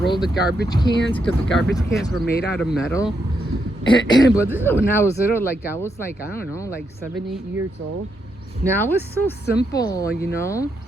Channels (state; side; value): normal; both; correlation 0.81